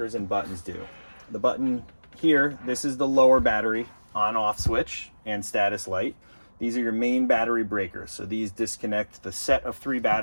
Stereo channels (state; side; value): inverted; both; correlation -1.00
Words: and buttons do. The button here, this is the lower battery on-off switch and status light. These are your main battery breakers. So these disconnect the set of 3